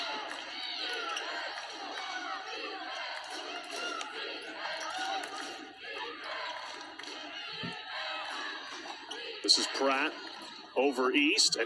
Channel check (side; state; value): both; identical; correlation 1.00